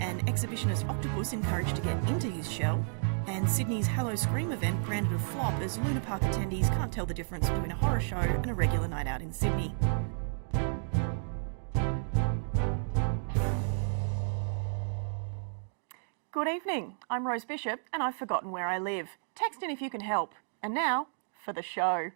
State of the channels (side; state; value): left; silent; digital silence